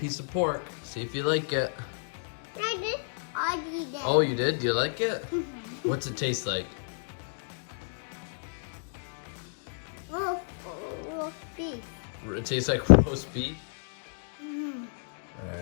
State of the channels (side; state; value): right; silent; digital silence